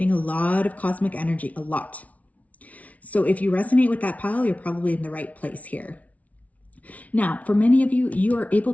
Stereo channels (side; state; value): right; late; 0.069 ms